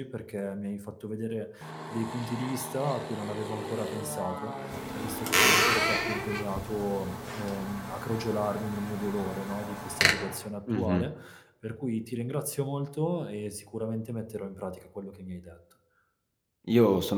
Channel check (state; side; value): identical; both; correlation 1.00